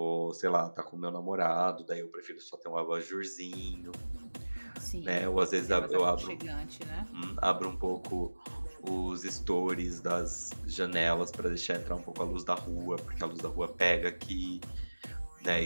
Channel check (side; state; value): both; inverted; correlation -1.00